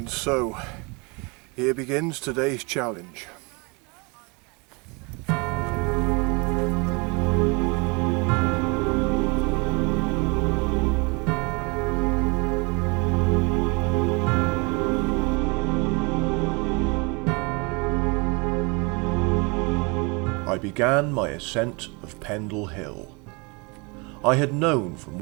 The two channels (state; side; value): quieter; left; 29.7 dB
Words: so, here begins today's challenge. I began my ascent of Pendle Hill. I had known from